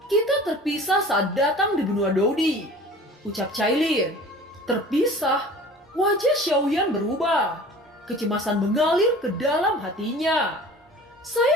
"Kita terpisah saat datang di benua Dodi," ucap Cailin. "Terpisah?" Wajah Xiaoyan berubah. Kecemasan mengalir ke dalam hatinya.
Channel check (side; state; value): both; normal; correlation 0.43